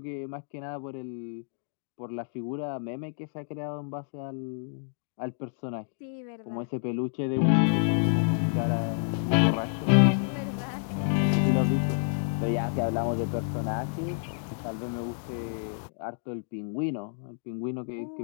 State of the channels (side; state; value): right; silent; digital silence